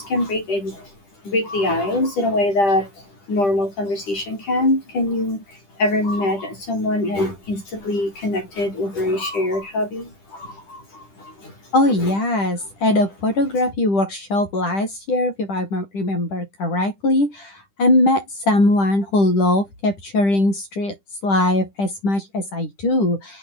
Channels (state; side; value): late; right; 10 ms